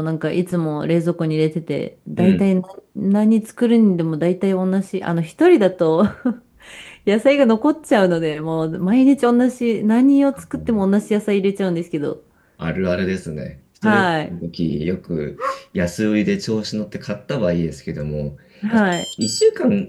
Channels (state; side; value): identical; both; correlation 1.00